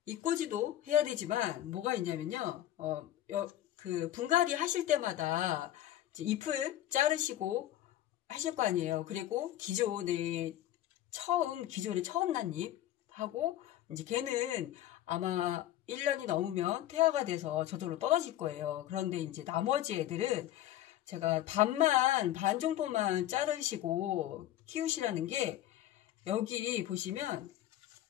이꼬지도 해야 되지만 뭐가 있냐면요. 그 분갈이 하실 때마다 이제 잎을 자르시고 하실 거 아니에요. 그리고 기존에 처음 난 잎하고 이제 걔는 아마 1년이 넘으면 퇴화가 돼서 저절로 떨어질 거예요. 그런데 이제 나머지 애들은 제가 반 정도만 자르시고 키우시라는 게 여기 보시면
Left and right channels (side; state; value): right; quieter; 13.1 dB